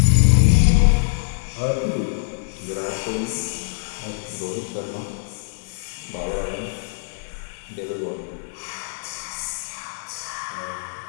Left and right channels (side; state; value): right; silent; digital silence